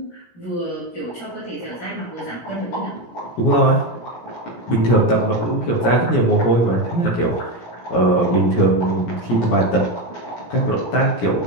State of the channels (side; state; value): right; late; 17 ms